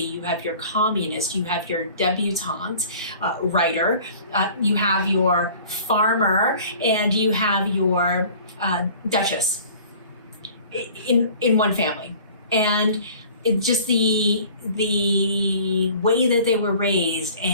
you have your communist, you have your debutante writer, you have your farmer, and you have your duchess in one family. And it just the way that they were raised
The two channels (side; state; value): both; inverted; correlation -0.47